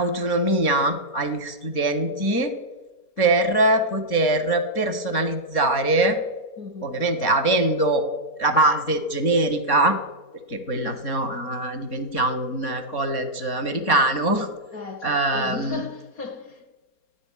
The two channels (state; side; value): late; right; 4.3 ms